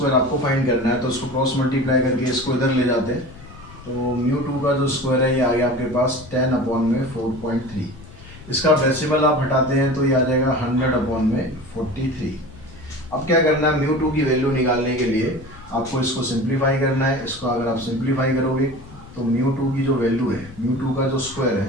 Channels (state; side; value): noise; left; rumble, 19 dB below the sound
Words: आपको फाइंड करना है। तो इसको क्रॉस मल्टीप्लाई करके इसको इधर ले जाते हैं तो म्यू टू का जो स्क्वायर है ये आ गया आपके पास 10/4.3। इसका डेसिमल आप हटाते हैं तो ये आ जाएगा 100/43। अब क्या करना है, म्यू टू की वैल्यू निकालने के लिए आपको इसको सिंप्लीफाई करना है। इसको अगर आप सिंप्लीफाई करोगे तो म्यू टू की जो वैल्यू है, म्यू टू का जो स्क्वायर